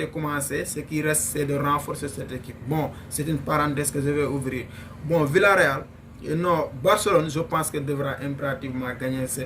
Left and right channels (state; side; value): identical; both; correlation 1.00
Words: commencé, ce qui reste, c'est de renforcer cette équipe. Bon, c'est une parenthèse que je vais ouvrir. Bon, Villarreal, non, Barcelone, je pense qu'elle devra impérativement gagner